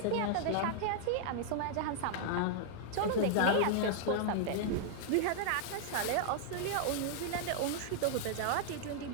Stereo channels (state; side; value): different; both; correlation -0.01